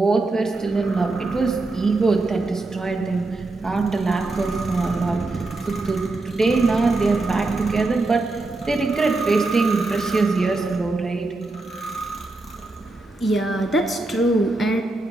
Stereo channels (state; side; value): quieter; left; 3.1 dB